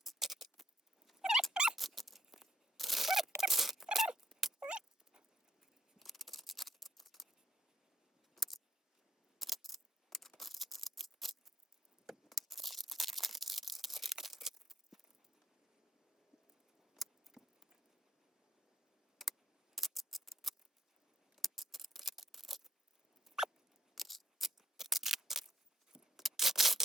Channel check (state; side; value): normal; both; correlation 0.73